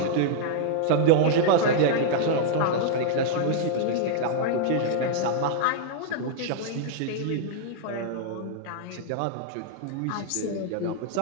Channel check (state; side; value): different; both; correlation -0.01